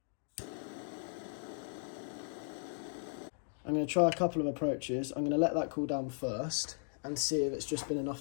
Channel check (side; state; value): right; silent; digital silence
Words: I'm going to try a couple of approaches. I'm going to let that cool down first and see if it's just been